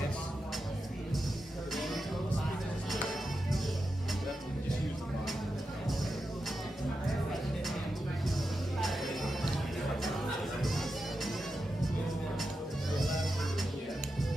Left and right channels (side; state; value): both; normal; correlation 0.89